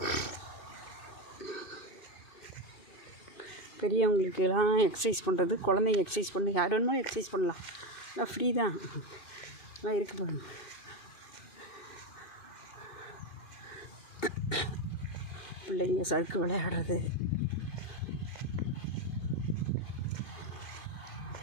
பெரியவங்களுக்கெல்லாம் எக்ஸசைஸ் பண்ணுறது, குழந்தைங்க எக்ஸசைஸ் பண்ணி யார் வேணுமோ எக்ஸசைஸ் பண்ணலாம். எல்லாம் ஃப்ரீ தான், எல்லாம் இருக்குது பாருங்க. பிள்ளைங்க சறுக்கு விளையாடுறது,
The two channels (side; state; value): right; late; 2.7 ms